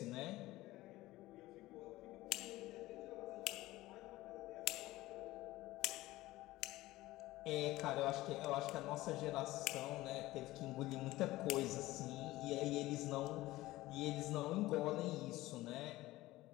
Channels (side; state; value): right; quieter; 17.7 dB